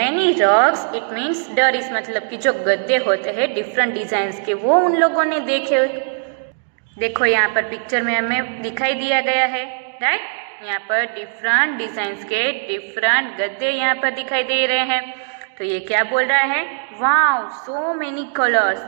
rugs. It means दरीस मतलब कि जो गद्दे होते हैं डिफरेंट डिजाइन के वो उन लोगों ने देखे. देखो यहाँ पर पिक्चर में हमें दिखाई दिया गया है. राइट. यहाँ पर डिफरेंट डिजाइन के डिफरेंट गद्दे यहाँ पर दिखाई दे रहे हैं. तो ये क्या बोल रहा है, वाओ सो मेनी कलर्स,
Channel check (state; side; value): silent; left; digital silence